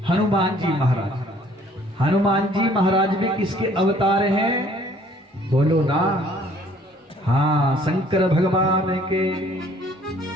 हनुमान जी महाराज। हनुमान जी महाराज भी किसके अवतार हैं? बोलो ना। हाँ, शंकर भगवान के।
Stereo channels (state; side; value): normal; both; correlation 0.58